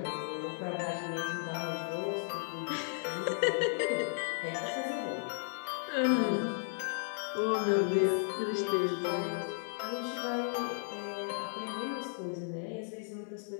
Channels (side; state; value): right; silent; 55 dB below the other